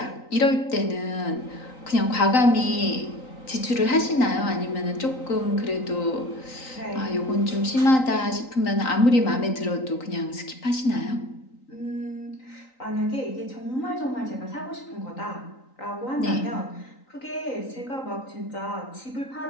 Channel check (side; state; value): right; late; 3.9 ms